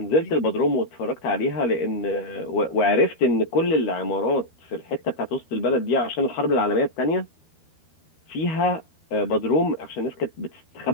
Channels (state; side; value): late; right; 13 ms